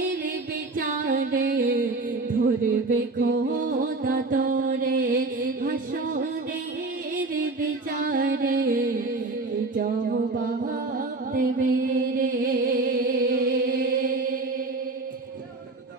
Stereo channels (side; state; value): left; quieter; 3.4 dB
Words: বিচারে ধরবে খোদা তোরে হাসরের বিচারে জবাব দেবে রে।